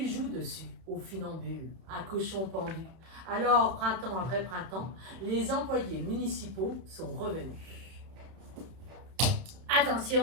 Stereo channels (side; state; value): left; late; 31 ms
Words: jouent dessus, aux funambules, à cochons pendus. Alors, printemps après printemps, les employés municipaux sont revenus.